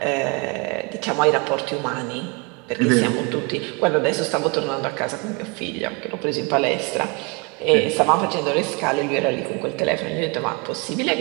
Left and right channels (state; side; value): quieter; left; 30.9 dB